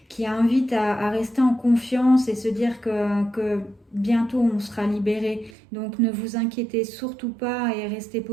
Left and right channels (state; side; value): drops out; left; at 5.5 s